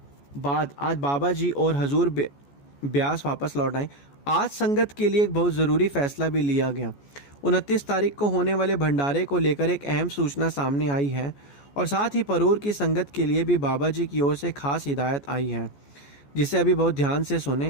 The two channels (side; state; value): right; late; 14 ms